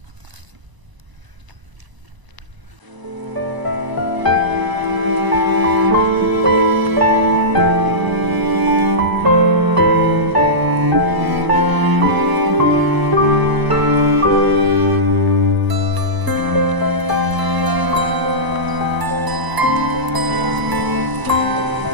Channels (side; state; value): left; late; 1.0 ms